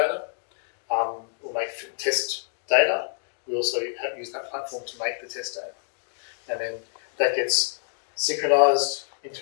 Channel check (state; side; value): silent; right; digital silence